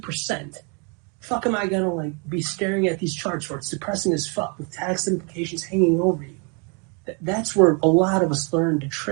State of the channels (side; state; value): left; quieter; 34.9 dB